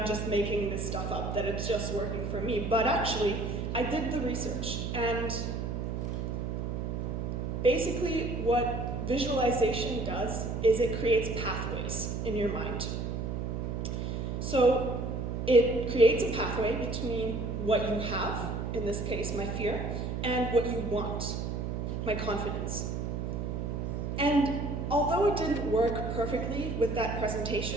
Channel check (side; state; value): right; noise; hum, 3 dB below the sound